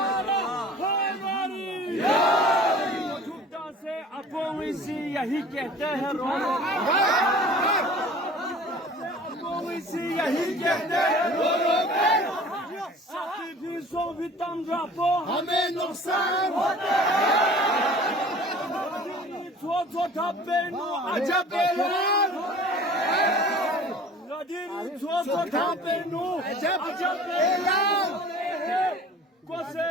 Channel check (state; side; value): normal; both; correlation 0.45